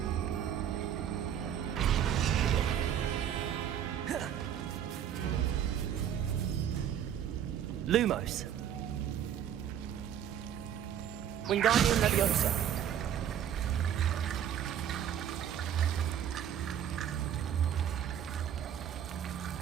Lumos! Wingardium Leviosa!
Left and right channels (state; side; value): quieter; left; 9.7 dB